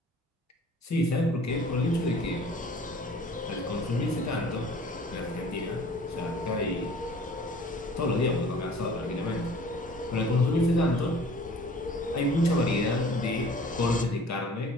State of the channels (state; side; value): normal; both; correlation 0.49